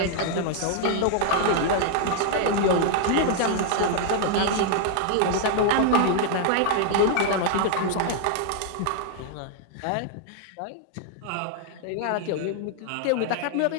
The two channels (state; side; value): different; both; correlation 0.00